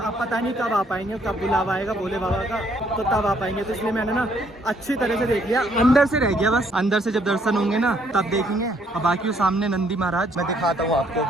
पता नहीं कब आ पाएंगे, कब बुलावा आएगा भोले बाबा का तो तब आ पाएंगे। तो इसलिए मैंने ना अच्छी तरह से देख लिया, अंदर से रह गया बस। अंदर से जब दर्शन होंगे ना तब देखेंगे। और बाकी वो सामने नंदी महाराज मैं दिखाता हूँ आपको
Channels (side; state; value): both; normal; correlation 0.67